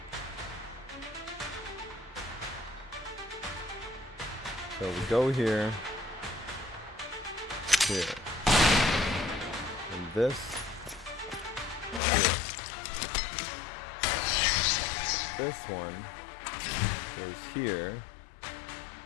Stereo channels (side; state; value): right; drops out; at 12.0 s